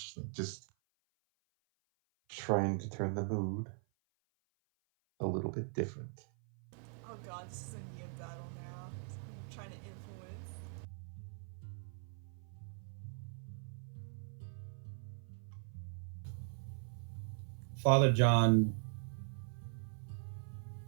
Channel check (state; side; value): silent; left; 51 dB below the other